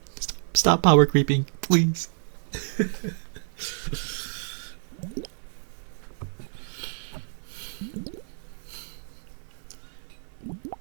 Stop power creeping, please!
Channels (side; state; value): left; silent; 57 dB below the other